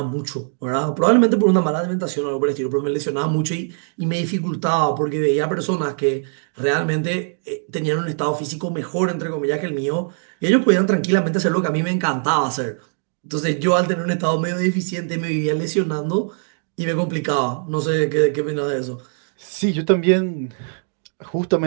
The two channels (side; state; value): left; silent; 63 dB below the other